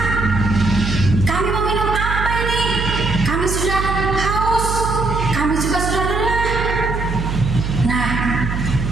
kami mau minum apa ini? Kami sudah haus, kami juga sudah lelah. Nah,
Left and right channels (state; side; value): noise; right; hum, 3 dB below the sound